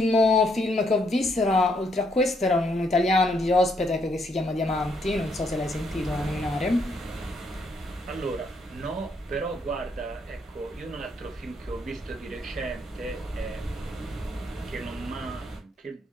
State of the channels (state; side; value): normal; both; correlation 0.73